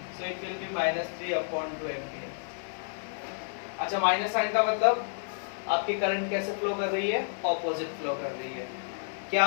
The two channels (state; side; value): silent; right; 58 dB below the other